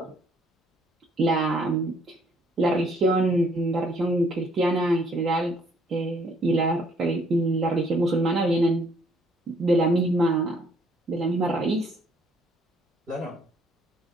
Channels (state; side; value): normal; both; correlation 0.64